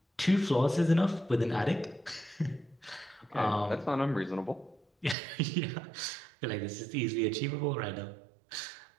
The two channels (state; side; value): drops out; left; at 5.2 s